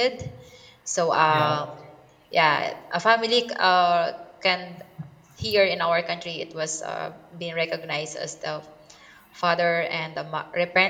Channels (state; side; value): identical; both; correlation 1.00